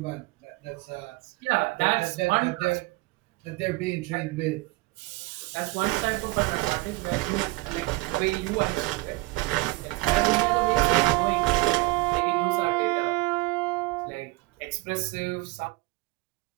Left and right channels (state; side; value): quieter; left; 22.1 dB